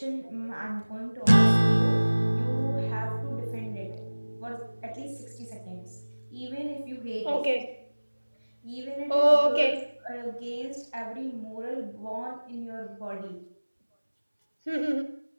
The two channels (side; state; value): both; inverted; correlation -1.00